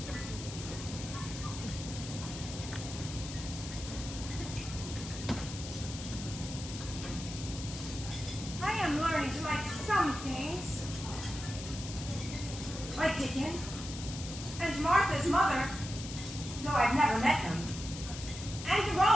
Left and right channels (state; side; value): noise; left; hiss, 10 dB below the sound